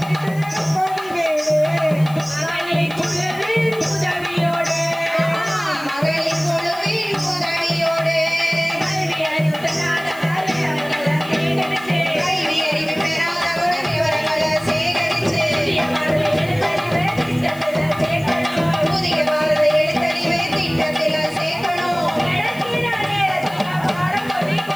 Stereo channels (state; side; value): noise; left; hiss, 20 dB below the sound